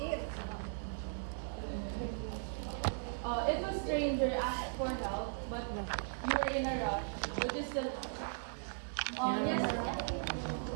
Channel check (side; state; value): left; silent; digital silence